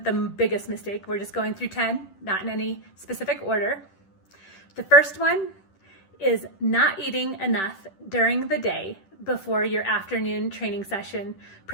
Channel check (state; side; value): late; right; 10 ms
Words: the biggest mistake, we're just going through 10, not in any specific order. The first one is not eating enough during the day before your afternoon training session,